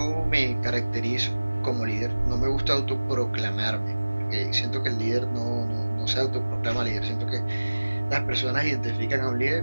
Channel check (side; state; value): both; inverted; correlation -1.00